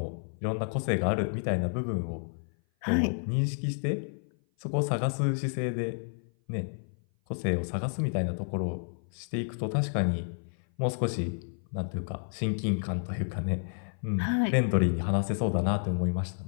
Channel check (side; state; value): right; silent; 56 dB below the other